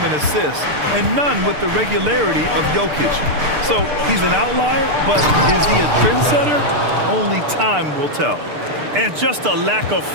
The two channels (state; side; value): late; left; 6.7 ms